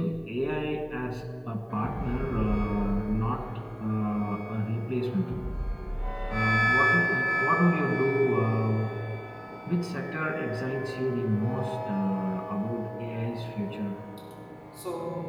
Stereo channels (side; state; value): both; identical; correlation 1.00